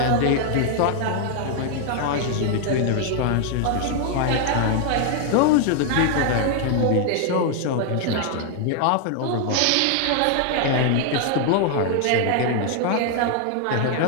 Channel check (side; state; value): both; different; correlation 0.00